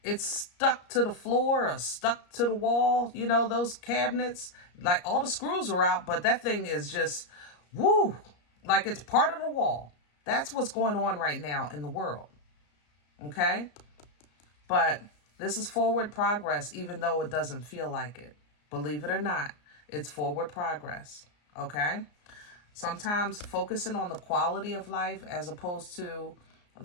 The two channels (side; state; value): right; late; 34 ms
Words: it's stuck to the floor or stuck to the wall. You know, those cabinets, like all the screws are out, but that thing is just, woo, like it's part of the wall. That's what's going on right now in the world. Okay? But this is forward progress, even though it doesn't feel like it. Believe it or not, it's forward progress. Okay? Sometimes focusing on the quality of life as opposed to